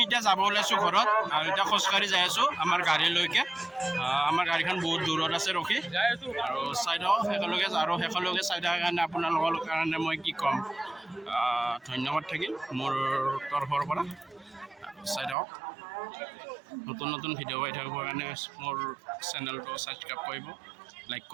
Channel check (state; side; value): drops out; left; at 15.4 s